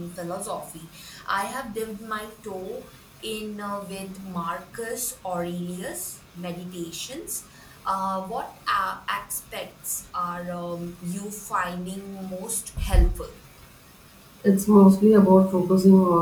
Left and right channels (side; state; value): both; identical; correlation 1.00